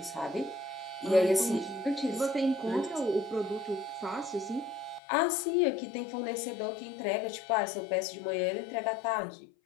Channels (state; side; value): drops out; right; at 5.0 s